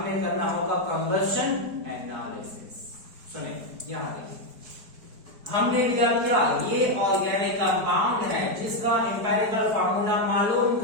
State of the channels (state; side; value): late; left; 4.6 ms